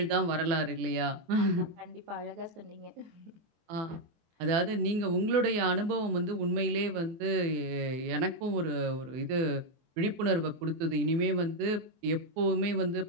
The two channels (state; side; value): late; left; 23 ms